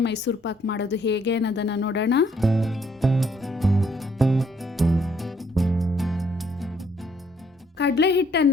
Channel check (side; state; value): both; normal; correlation 0.68